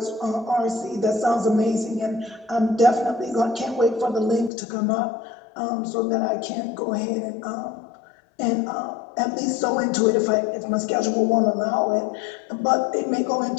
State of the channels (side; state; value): right; drops out; at 4.5 s